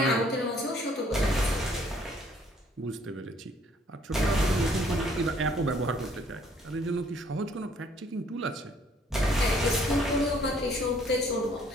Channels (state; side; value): normal; both; correlation 0.62